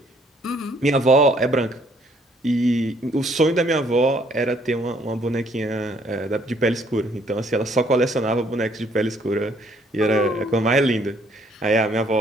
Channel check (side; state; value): both; normal; correlation 0.65